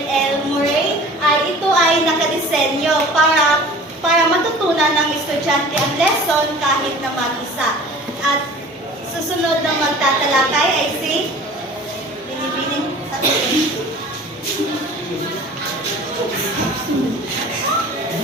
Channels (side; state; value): both; normal; correlation 0.43